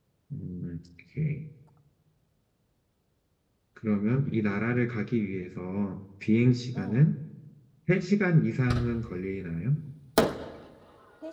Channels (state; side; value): identical; both; correlation 1.00